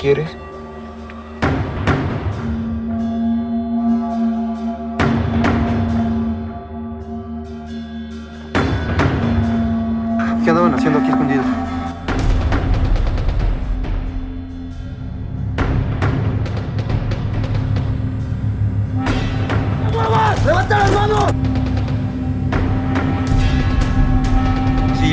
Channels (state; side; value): identical; both; correlation 1.00